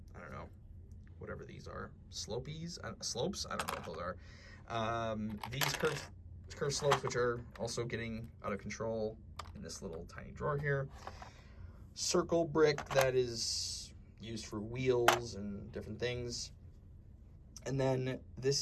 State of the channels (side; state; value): both; identical; correlation 1.00